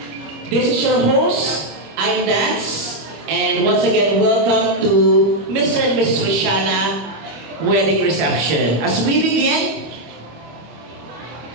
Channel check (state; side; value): late; left; 25 ms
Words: This is your host, I'm Dance, and once again, welcome to Mr. and Mrs. Rosiana wedding reception. As we begin,